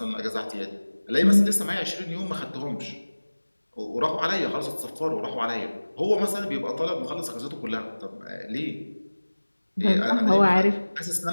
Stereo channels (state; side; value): inverted; both; correlation -1.00